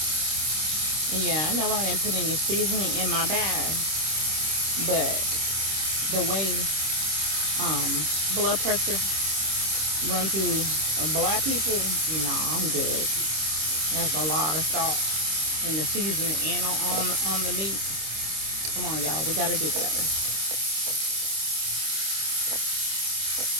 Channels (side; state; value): left; late; 26 ms